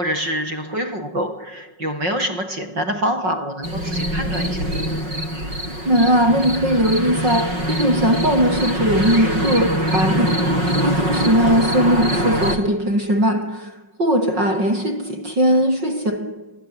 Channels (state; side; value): late; left; 5.4 ms